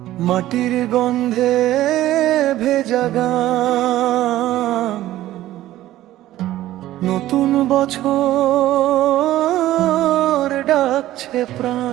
মাটির গন্ধে ভেজা গান, নতুন বছর ডাকছে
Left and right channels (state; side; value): quieter; left; 14.6 dB